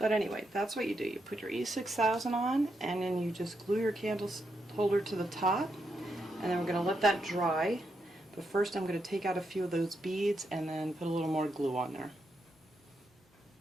anyway, that's what you do. You put your E6000 on, and then you just glue your candle holder to the top, and then we're going to let that dry. But first I'm going to take out a few of those beads and then put a little more glue on there.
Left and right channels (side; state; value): both; normal; correlation 0.82